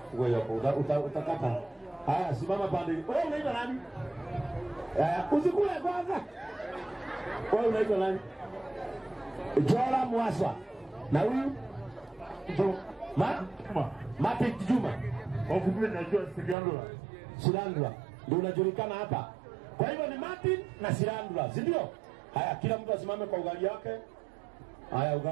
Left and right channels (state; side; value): drops out; left; at 16.6 s